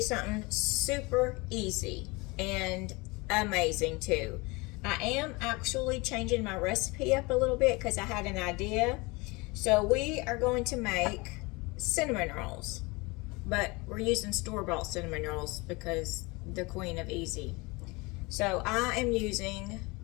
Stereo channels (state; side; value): quieter; right; 25.4 dB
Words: something super easy and amazing too. I am actually changing my recipe up a little bit because I had an idea. So we are going to make cinnamon rolls, but we're using store-bought cinnamon rolls because the queen of easy. So I am using